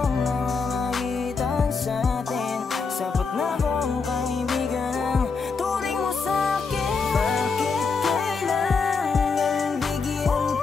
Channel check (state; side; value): quieter; right; 4.9 dB